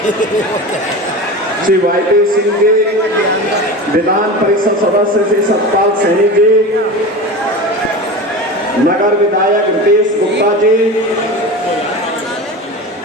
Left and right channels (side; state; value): both; normal; correlation 0.29